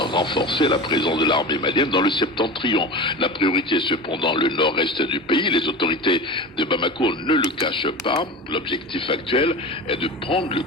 la présence de l'armée malienne dans le septentrion. La priorité est cependant le nord-est du pays. Les autorités de Bamako ne le cachent pas. L'objectif actuel est de prendre le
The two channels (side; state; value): both; normal; correlation 0.30